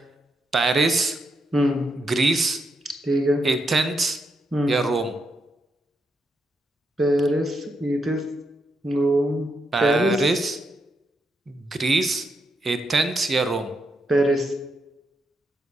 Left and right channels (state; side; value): normal; both; correlation 0.82